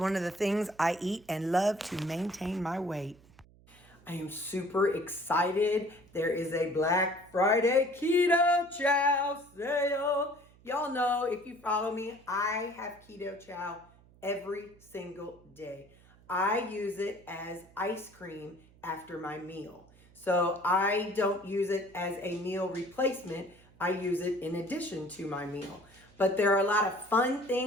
of the things I eat and love to maintain my weight. I am super excited. There is a Black Friday Keto Chow sale. Y'all know, if you follow me, I have Keto Chow every single day. I use it as ice cream after my meal. So I don't use it as a meal replacement. I use it in addition to my meal. But there are a lot of fun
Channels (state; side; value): noise; right; hum, 27 dB below the sound